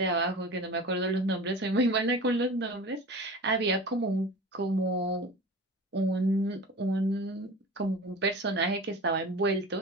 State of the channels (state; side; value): normal; both; correlation 0.36